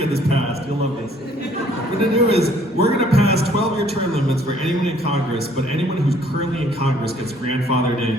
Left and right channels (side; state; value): both; normal; correlation 0.60